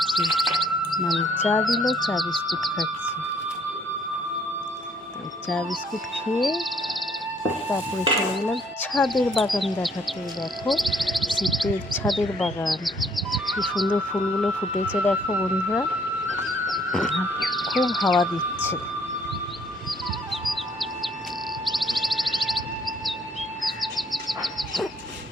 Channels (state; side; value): normal; both; correlation 0.65